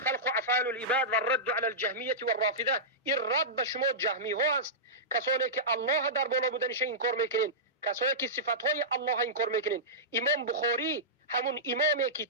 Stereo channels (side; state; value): both; normal; correlation -0.15